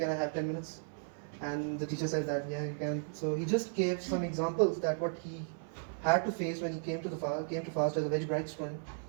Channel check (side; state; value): left; silent; 54 dB below the other